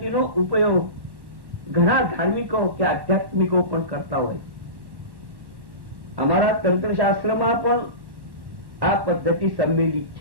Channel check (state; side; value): late; left; 1.1 ms